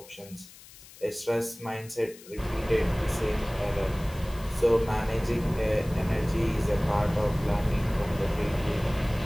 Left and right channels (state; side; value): noise; left; hiss, 20 dB below the sound